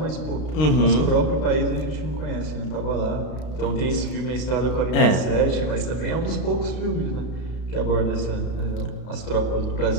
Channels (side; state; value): right; late; 32 ms